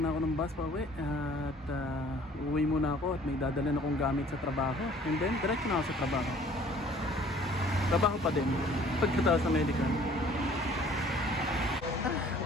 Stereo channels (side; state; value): both; normal; correlation 0.54